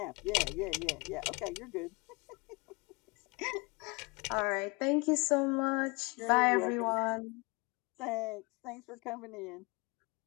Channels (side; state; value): right; quieter; 28.1 dB